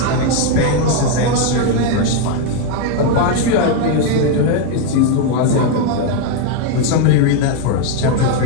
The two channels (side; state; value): both; different; correlation 0.01